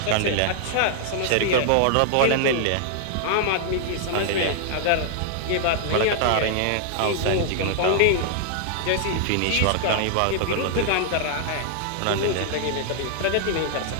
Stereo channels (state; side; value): different; both; correlation -0.01